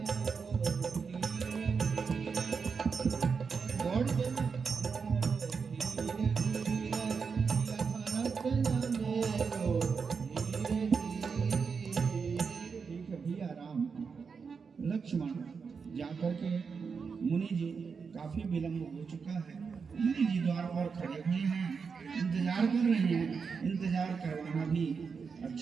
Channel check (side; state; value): left; quieter; 5.6 dB